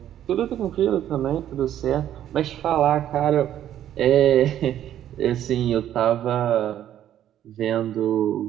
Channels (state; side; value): quieter; left; 11.2 dB